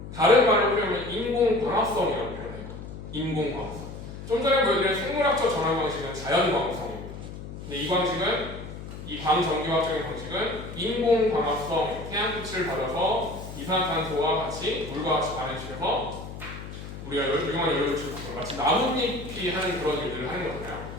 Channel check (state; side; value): noise; left; hum, 11 dB below the sound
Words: 다른 말로 표현하면 인공광합성이라고 표현해요. 인공광합성. 좀 전에 보여드린 생물학적 전환 방식은 자연광합성입니다. 근데 이 광전기화학적인 방식은 인공광합성, 태양빛을 받아서 이산화탄소와 같이 물과 같이 반응시켜서 우리가 유용한 연료를 주고 마치 나뭇잎이 하는 그런 일들을 하는 거잖아요.